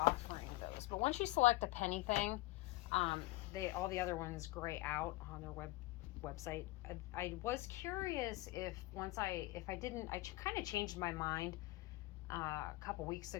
those. But once you select a penny thing, all the other ones gray out on their website. I was curious if I kind of changed my mind a couple weeks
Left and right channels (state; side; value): quieter; right; 19.7 dB